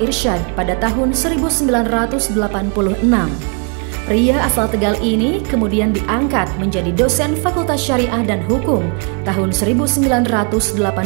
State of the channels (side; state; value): left; quieter; 37.7 dB